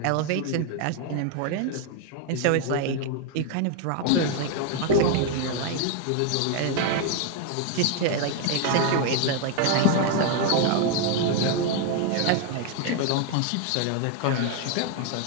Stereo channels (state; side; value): different; both; correlation 0.01